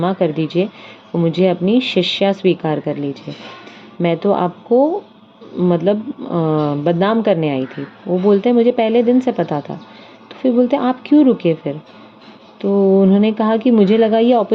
कर दीजिए, मुझे अपनी शिष्या स्वीकार कर लीजिए, मैं तो आपको मतलब बदनाम करने आई थी। वो बोलते हैं मुझे पहले दिन से पता था। तो फिर बोलते हैं आप क्यों रुके फिर? तो उन्होंने कहा कि मुझे लगा ये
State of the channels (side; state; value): both; identical; correlation 1.00